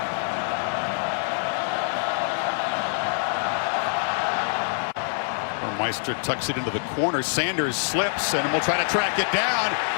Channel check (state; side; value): silent; right; 62 dB below the other